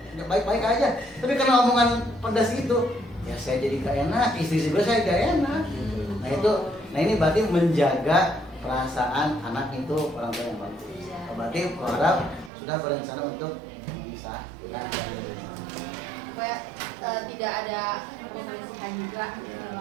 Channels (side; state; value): left; drops out; at 12.5 s